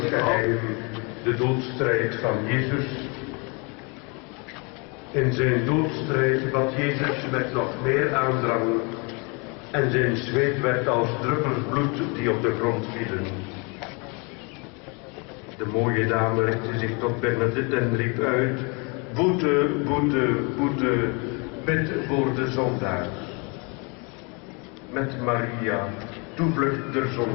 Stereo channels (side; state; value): right; quieter; 31.7 dB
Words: geheim, de doodstrijd van Jezus. In zijn doodstrijd bad Jezus met nog meer aandrang en zijn zweet werd als druppels bloed die op de grond vielen. De mooie dame richtte zich tot Bernadette en riep uit: boete, boete, boete, bid voor de zondaars. Met Maria, toevlucht der